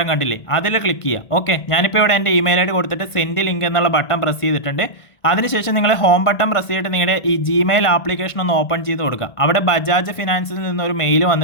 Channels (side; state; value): right; late; 1.6 ms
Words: കണ്ടില്ലേ, അതിൽ ക്ലിക്ക് ചെയ്യുക. ഓക്കെ, ഞാനിപ്പോൾ ഇവിടെ എൻ്റെ ഇമെയിൽ ID കൊടുത്തിട്ട് സെൻഡ് ലിങ്ക് എന്നുള്ള ബട്ടൺ പ്രസ് ചെയ്തിട്ടുണ്ട്. അതിനുശേഷം നിങ്ങൾ ഹോം ബട്ടൺ പ്രസ് ചെയ്തിട്ട് നിങ്ങളുടെ ഈ Gmail ആപ്ലിക്കേഷൻ ഒന്ന് ഓപ്പൺ ചെയ്ത് കൊടുക്കുക. അവിടെ ബജാജ് ഫിനാൻസിൽ നിന്നൊരു മെയിൽ